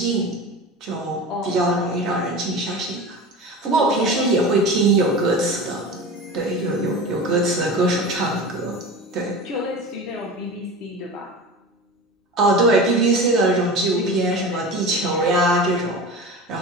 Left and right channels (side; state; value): both; normal; correlation 0.31